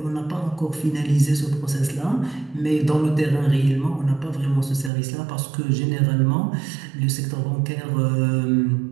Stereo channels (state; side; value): drops out; left; at 4.9 s